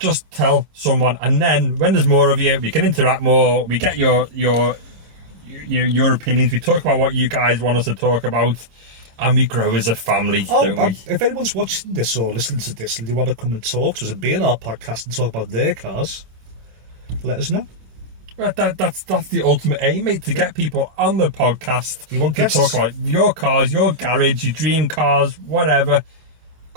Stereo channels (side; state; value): left; late; 26 ms